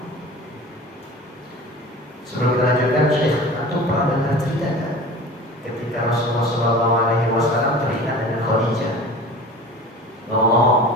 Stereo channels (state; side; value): normal; both; correlation 0.38